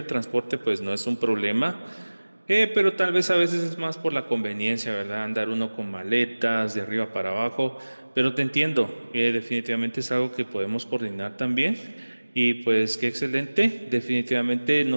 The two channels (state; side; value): inverted; both; correlation -1.00